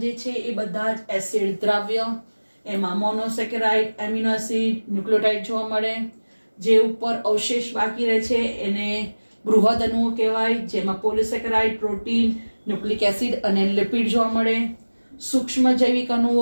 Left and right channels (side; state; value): both; inverted; correlation -1.00